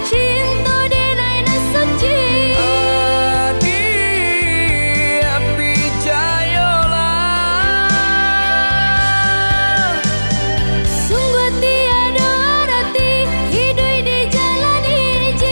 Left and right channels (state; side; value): inverted; both; correlation -1.00